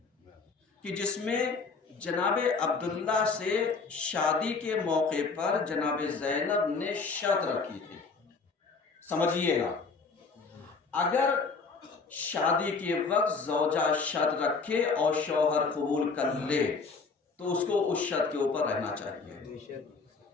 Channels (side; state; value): right; quieter; 4.6 dB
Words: کہ جس میں جناب عبداللہ سے شادی کے موقع پر جناب زینب نے شرط رکھی تھی۔ سمجھیے گا، اگر شادی کے وقت زوجہ شرط رکھے اور شوہر قبول کر لے تو اس کو اس شرط کے اوپر رہنا چاہیے۔